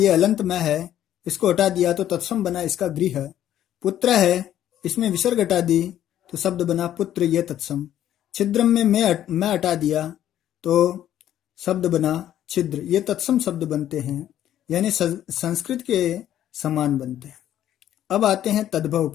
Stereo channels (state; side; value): quieter; right; 11.5 dB